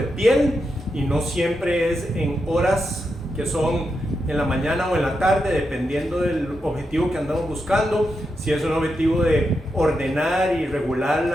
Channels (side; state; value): both; normal; correlation 0.86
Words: piel y no siempre es en horas que son en la mañana o en la tarde, dependiendo del objetivo que andamos buscando. Si es un objetivo de ordenar y regular